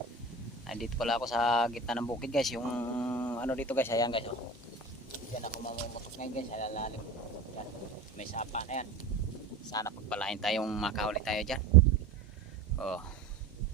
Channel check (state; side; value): quieter; left; 3.9 dB